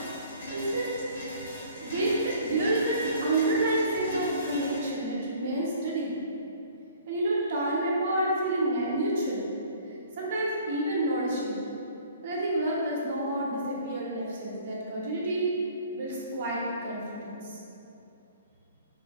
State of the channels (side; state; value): both; inverted; correlation -0.53